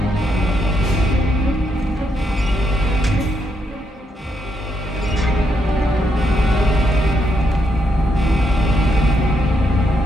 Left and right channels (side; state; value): both; normal; correlation 0.78